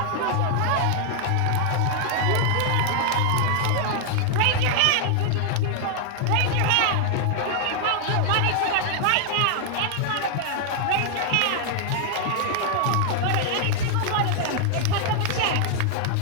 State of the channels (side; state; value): both; different; correlation 0.00